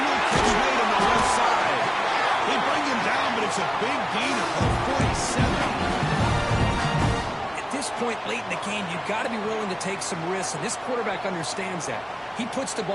catch made on the left side. They bring him down, but it's a big gain of 47. At this point late in the game, you've got to be willing to take some risks, and this quarterback understands that. He puts the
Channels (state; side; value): identical; both; correlation 1.00